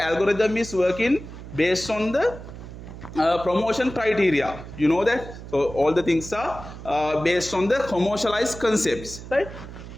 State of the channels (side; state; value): right; noise; hum, 13 dB below the sound